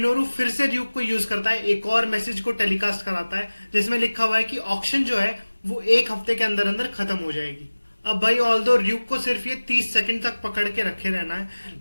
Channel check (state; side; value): inverted; both; correlation -1.00